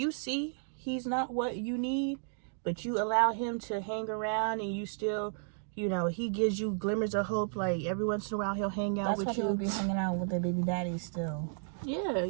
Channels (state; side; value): silent; left; digital silence